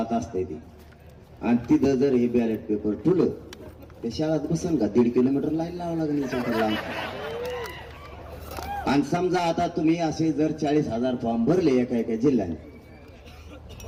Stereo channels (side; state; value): both; identical; correlation 1.00